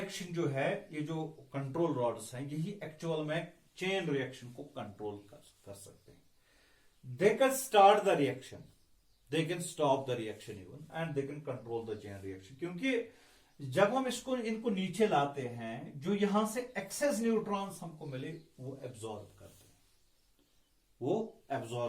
जो है, ये जो कंट्रोल रॉड्स हैं, यही एक्चुअल में चेन रिएक्शन को कंट्रोल कर सकते हैं। They can start the reaction, they can stop the reaction even, and they can control the chain reaction. क्योंकि जब हम इनको नीचे लाते हैं, जो यहां से एक्सेस न्यूट्रॉन्स हमको मिले वो एब्जॉर्ब करते हैं, वो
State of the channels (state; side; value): identical; both; correlation 1.00